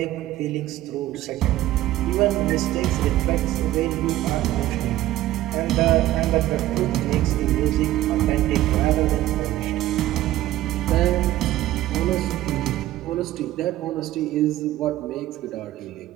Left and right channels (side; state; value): left; quieter; 14.8 dB